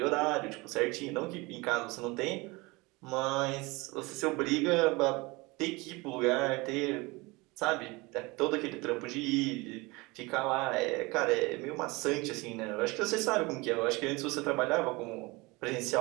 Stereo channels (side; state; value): left; quieter; 24.3 dB